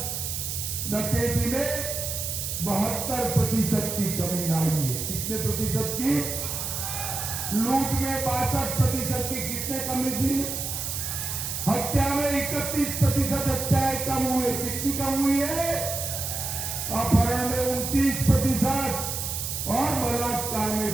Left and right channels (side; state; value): right; noise; hiss, 4 dB below the sound